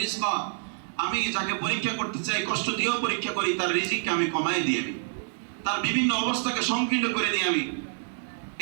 রিজকা। আমি যাকে পরীক্ষা করতে চাই, কষ্ট দিয়েও পরীক্ষা করি, তার রিজিককে আমি কমায় দিই, আমি তার বিভিন্ন অবস্থাকে সংকীর্ণ করে দিই আমি।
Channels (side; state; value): left; silent; digital silence